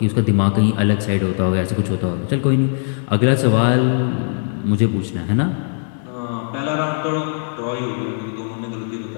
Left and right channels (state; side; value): silent; right; 62 dB below the other